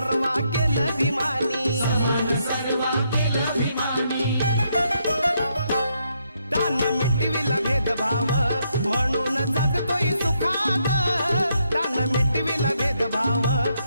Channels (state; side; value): inverted; both; correlation -0.76